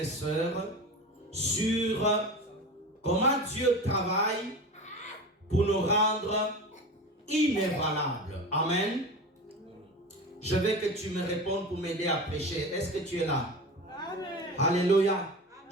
sœurs, sur comment Dieu travaille pour nous rendre inébranlables. Amen. Je veux que tu me répondes pour m'aider à prêcher. Est-ce que tu es là? Amen. Alléluia.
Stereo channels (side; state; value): both; normal; correlation 0.30